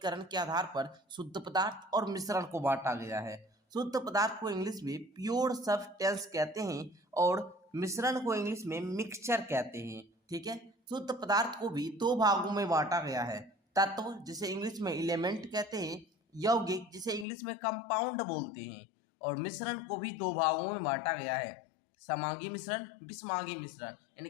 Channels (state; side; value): drops out; right; at 17.2 s